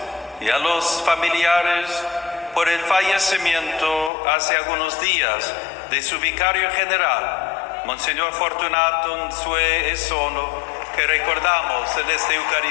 y a los familiares por el fallecimiento hace algunos días de su vicario general, Monseñor Fortunato Nsue Esono, que recordamos en esta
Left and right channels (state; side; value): drops out; right; at 4.1 s